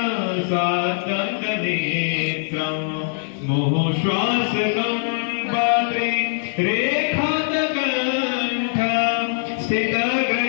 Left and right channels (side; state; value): right; silent; digital silence